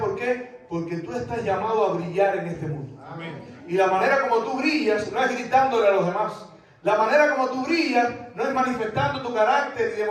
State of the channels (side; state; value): both; identical; correlation 1.00